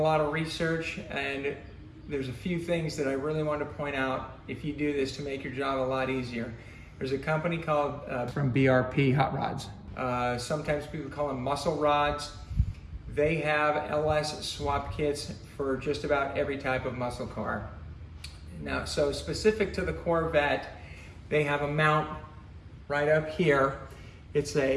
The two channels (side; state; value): both; identical; correlation 1.00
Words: of research, and there's a few things that I really want to point out if you do this to make your job a lot easier. There's a company called from BRP Hot Rods. Sometimes people call them muscle rods. They have LS swap kits for just about every type of muscle car. Now, so specific to the Corvette, they have a mount right up here. It's